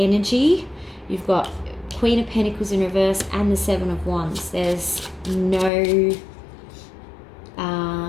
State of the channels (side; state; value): right; drops out; at 5.7 s